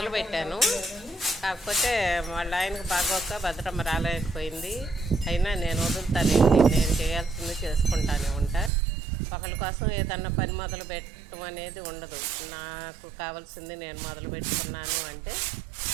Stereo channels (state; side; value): drops out; left; at 8.7 s